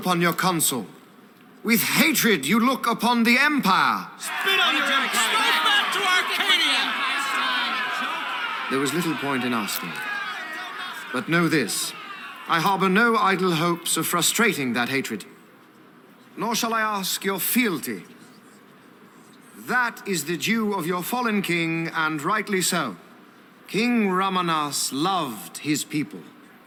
your consul? With hatred you look upon the Empire? Spit on your empire! Straight back to Arcadia! There was little point in asking. But know this, I harbor no idle hopes of frustrating that hatred. Nor shall I ask your fealty. That is the due of your fallen king, and rightly so. King Ramanas loved his people,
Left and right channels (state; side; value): identical; both; correlation 1.00